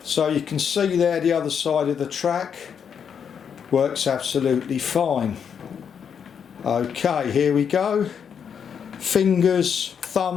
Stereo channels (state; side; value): quieter; right; 7.4 dB